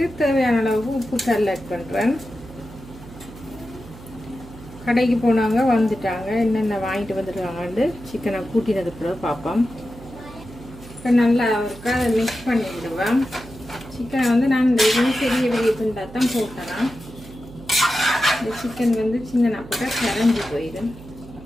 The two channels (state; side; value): noise; right; hum, 17 dB below the sound